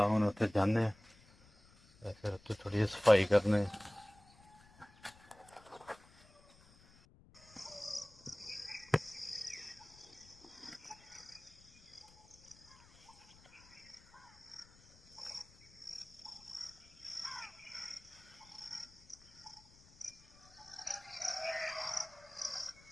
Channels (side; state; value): left; noise; rumble, 25 dB below the sound